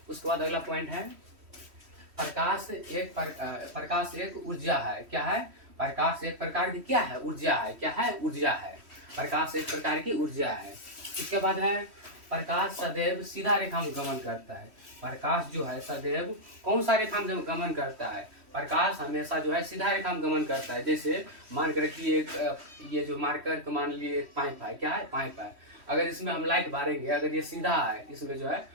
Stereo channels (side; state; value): left; late; 3.1 ms